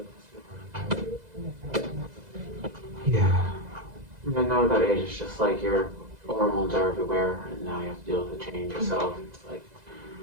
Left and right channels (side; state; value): left; late; 2.0 ms